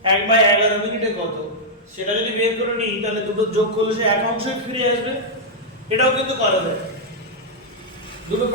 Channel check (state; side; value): normal; both; correlation -0.06